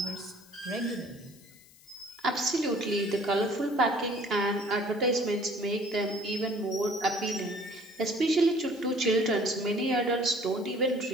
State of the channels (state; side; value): noise; left; hiss, 25 dB below the sound